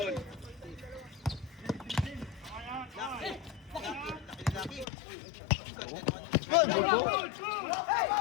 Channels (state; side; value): drops out; right; at 4.9 s